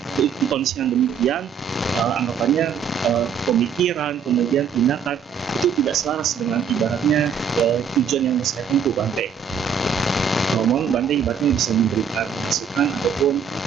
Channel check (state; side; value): quieter; left; 6.8 dB